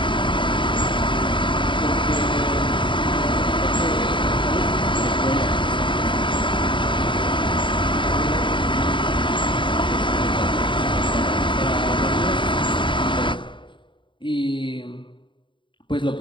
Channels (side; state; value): right; late; 0.24 ms